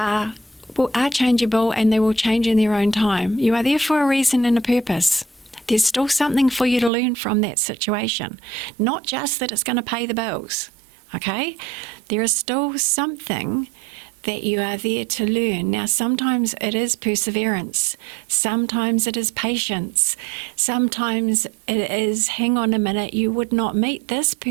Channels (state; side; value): drops out; left; at 6.9 s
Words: changeable, and they will change in their own time. You are there for a reason and a purpose. There's still something for you to learn from that situation. Not just that it's going to pay the bills, okay? There is still something that you are there to learn. Now, sometimes it is perseverance. Sometimes it is patience. Sometimes it is, hang on a minute, you would not meet this